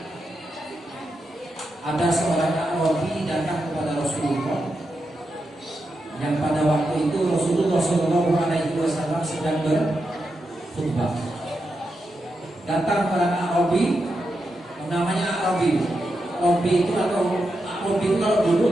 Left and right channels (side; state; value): both; normal; correlation 0.87